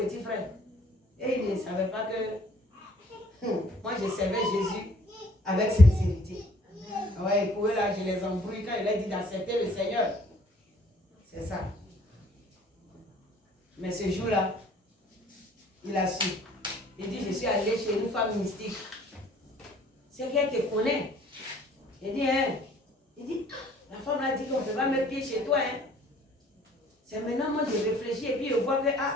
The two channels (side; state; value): both; normal; correlation 0.57